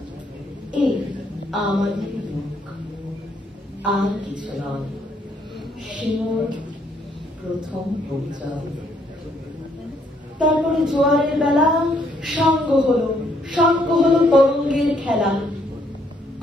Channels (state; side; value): normal; both; correlation 0.70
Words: এই আমাদের লোক, আর কিছু নয়। সে মোর প্রথম পরিচয়। তারপরে জোয়ারের বেলা সঙ্গ হলো তরঙ্গের খেলা।